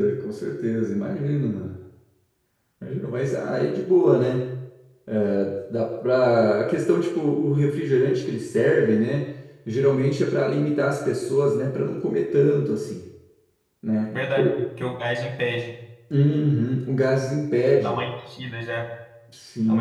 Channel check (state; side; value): identical; both; correlation 1.00